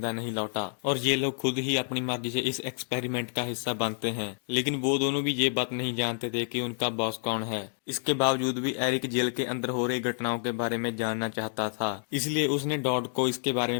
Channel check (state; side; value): silent; right; 59 dB below the other